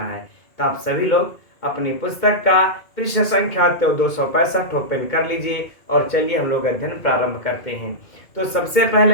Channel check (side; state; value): right; late; 2.3 ms